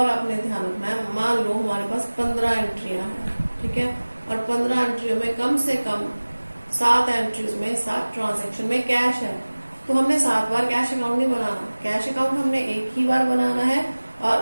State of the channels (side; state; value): both; inverted; correlation -1.00